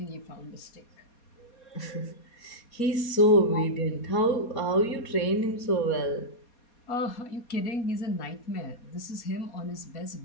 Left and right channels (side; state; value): right; late; 4.2 ms